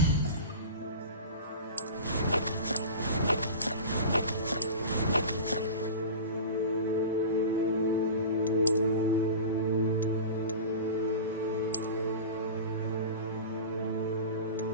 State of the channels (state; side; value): inverted; both; correlation -0.32